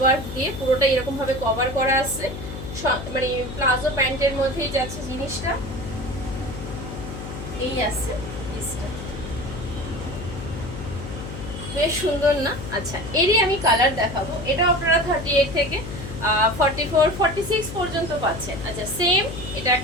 দিয়ে পুরোটা এরকম ভাবে কভার করা আছে, মানে প্লাজো প্যান্টের মধ্যেই যাচ্ছে জিনিসটা। এই আছে পিসটা, বেশ সুন্দর না? আচ্ছা, এরই আমি কালার দেখাবো। এটা আপনারা 38 থেকে 44, 46 পর্যন্ত পাচ্ছেন। আচ্ছা, সেম এটা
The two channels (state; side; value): noise; left; hum, 9 dB below the sound